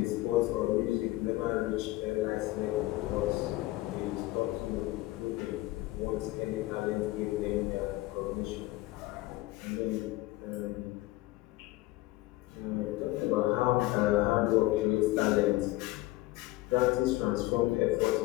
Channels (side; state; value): right; quieter; 18.5 dB